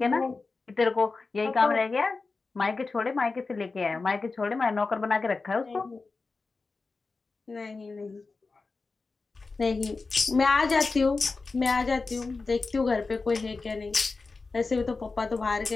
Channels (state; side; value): quieter; right; 4.0 dB